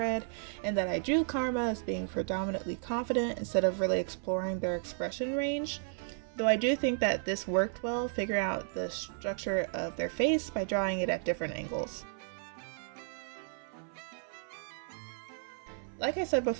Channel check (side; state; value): left; silent; 55 dB below the other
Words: and that I drew Karma as being predominantly confident instead of really exploring their expression range. Though I do think that this worked well, figuring out the structure of their face by drawing it at different angles. Like I said